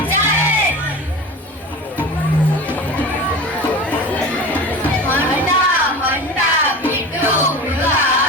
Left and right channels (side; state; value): both; normal; correlation 0.33